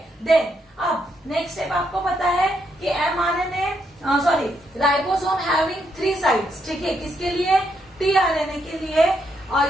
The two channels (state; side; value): normal; both; correlation 0.78